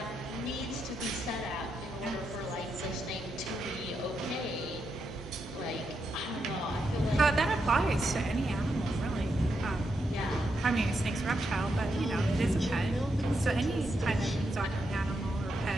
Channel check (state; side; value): normal; both; correlation 0.83